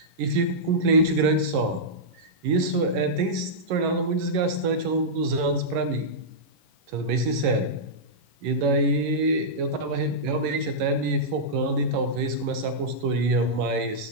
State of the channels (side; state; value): left; late; 11 ms